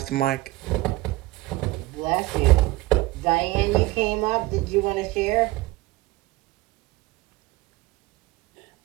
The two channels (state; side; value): quieter; left; 19.4 dB